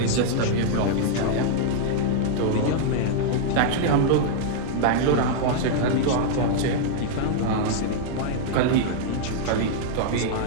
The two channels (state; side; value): different; both; correlation -0.01